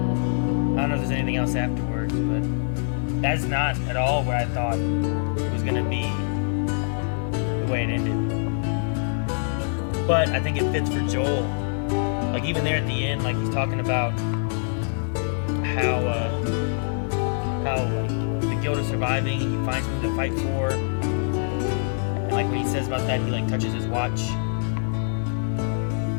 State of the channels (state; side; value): silent; right; 62 dB below the other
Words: I don't know if there's anything else afterwards, but that's not at all where I thought it was gonna be the way it ended. But I think it fits for Joel. Like even there at the end, like he's talking about how like the skill to surviving, and he finds something to fight for. And like when he says about that, he like touches his watch.